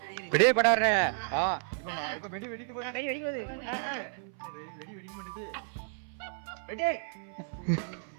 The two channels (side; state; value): left; silent; 56 dB below the other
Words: வெடியே படாரு. வெடி வெடிக்கு போது. வெடி வெடி போகுது. வெடி வெடிக்க மாட்டேது. வெடி.